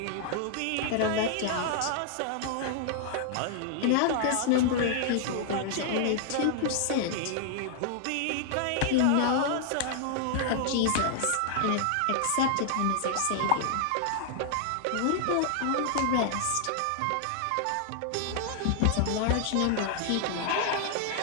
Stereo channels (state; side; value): different; both; correlation -0.01